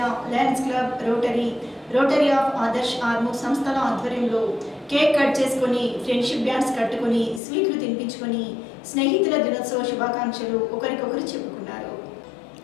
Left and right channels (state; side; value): drops out; right; at 7.4 s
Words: lions club, rotary of Adarsh Armoor సంస్థల ఆధ్వర్యంలో కేక్ కట్ చేసుకుని, ఫ్రెండ్షిప్ డ్యాన్స్ కట్టుకుని, స్వీట్లు తినిపించుకొని స్నేహితుల దినోత్సవ శుభాకాంక్షలు ఒకరికొకరు చెప్పుకున్నారు.